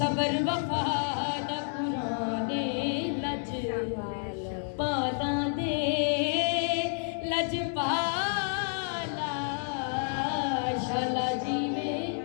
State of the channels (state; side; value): silent; right; 58 dB below the other